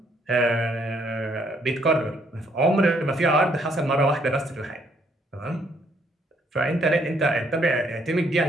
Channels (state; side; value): normal; both; correlation 0.68